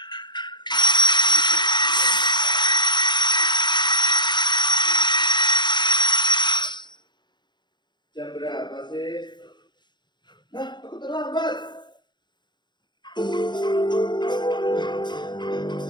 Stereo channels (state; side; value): late; right; 0.22 ms